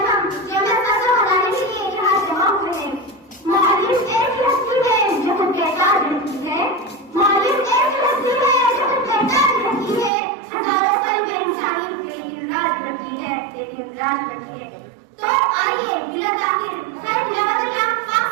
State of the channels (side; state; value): left; drops out; at 10.1 s